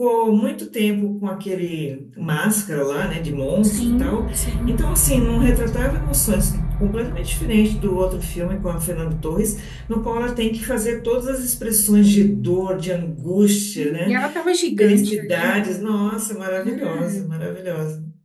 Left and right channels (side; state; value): both; identical; correlation 1.00